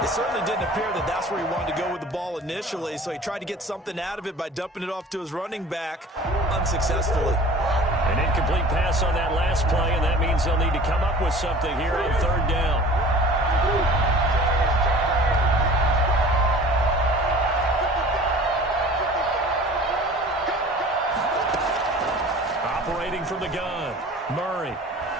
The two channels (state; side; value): normal; both; correlation 0.44